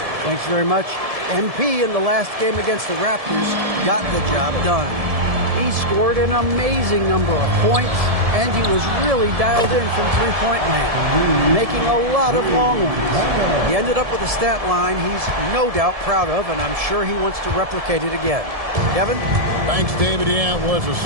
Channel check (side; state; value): left; late; 1.7 ms